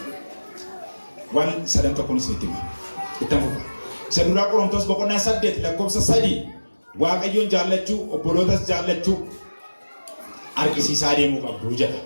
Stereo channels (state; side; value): inverted; both; correlation -1.00